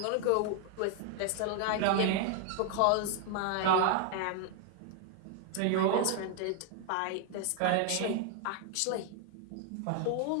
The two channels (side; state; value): both; different; correlation 0.00